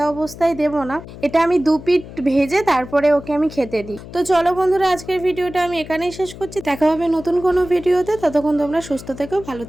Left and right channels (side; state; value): left; noise; hum, 15 dB below the sound